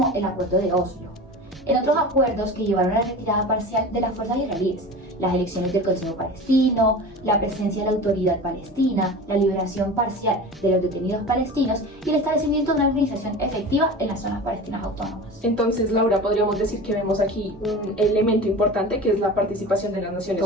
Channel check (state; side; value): normal; both; correlation 0.33